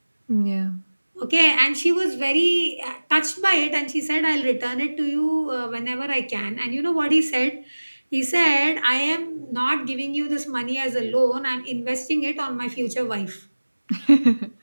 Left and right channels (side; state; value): both; inverted; correlation -1.00